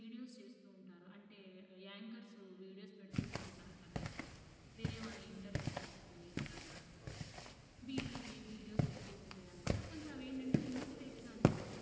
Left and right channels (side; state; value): both; identical; correlation 1.00